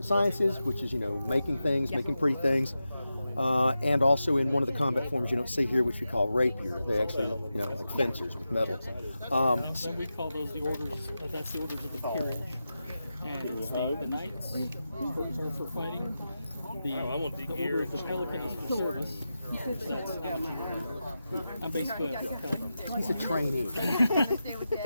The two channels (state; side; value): inverted; both; correlation -0.91